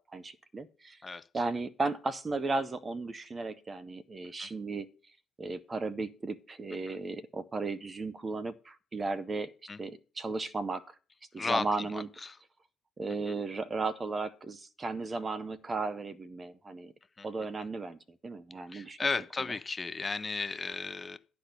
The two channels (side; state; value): both; normal; correlation 0.85